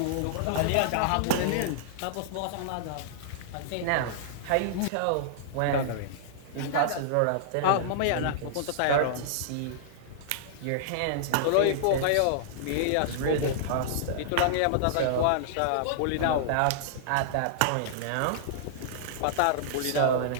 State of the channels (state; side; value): different; both; correlation -0.01